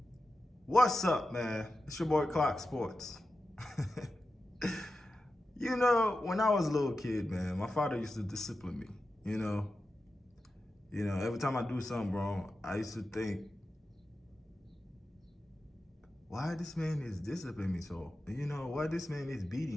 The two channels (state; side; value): normal; both; correlation 0.92